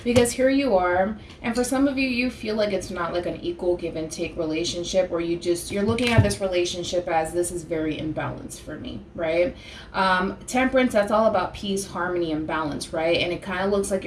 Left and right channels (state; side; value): identical; both; correlation 1.00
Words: Because here you are, and for some of you, you feel like it's not like an equal give and take relationship where you're looking at this relationship as this is very imbalanced for me, right? Temperance, that's all about peace, harmony, and balance, right? And it kind of looks like